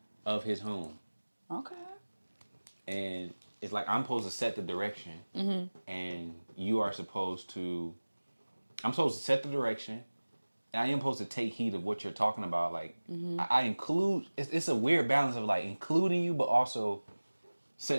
of his home. Okay. And it's like I'm supposed to set the direction, and you are supposed to. I'm supposed to set the direction, and I am supposed to take heed of what you're talking about. Like I include. It's a weird balance of like including you, but also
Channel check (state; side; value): inverted; both; correlation -1.00